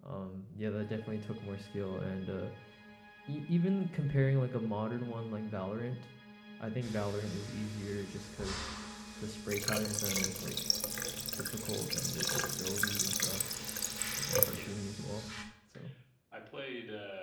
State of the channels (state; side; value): identical; both; correlation 1.00